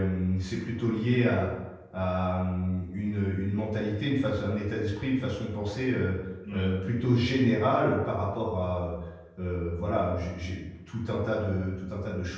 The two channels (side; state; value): both; identical; correlation 1.00